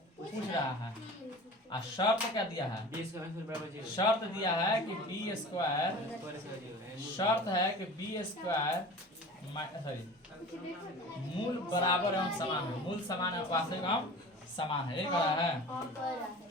पूछ रहा है, और शर्त क्या दिया है? शर्त दिया है कि बी स्क्वायर, शर्त है कि बी स्क्वायर सॉरी मूल बराबर एवं समान है, मूल समान है, वास्तविक एवं समान है, ये कह रहा है।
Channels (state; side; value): normal; both; correlation 0.39